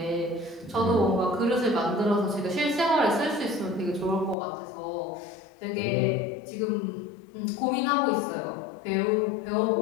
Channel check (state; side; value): drops out; right; at 4.4 s